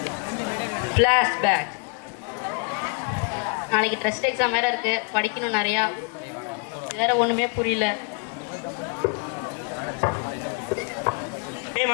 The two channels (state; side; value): quieter; right; 37.2 dB